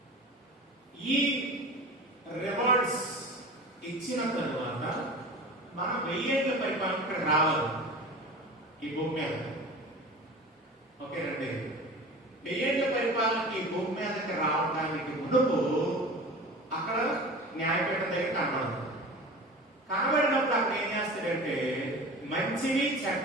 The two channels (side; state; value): both; normal; correlation 0.36